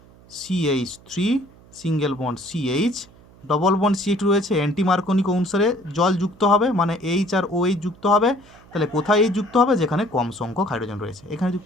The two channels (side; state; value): right; noise; hum, 25 dB below the sound